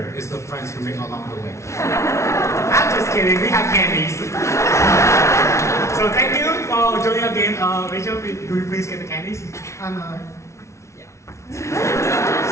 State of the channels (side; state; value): right; late; 0.13 ms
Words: is the friends who make along the way. I'm just kidding, we have candies. So thank you for joining our game. Rachel, do you please get the candies?